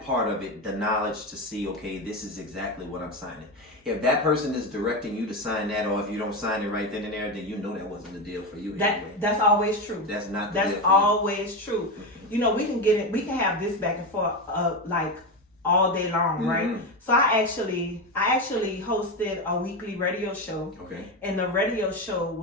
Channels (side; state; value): both; normal; correlation 0.16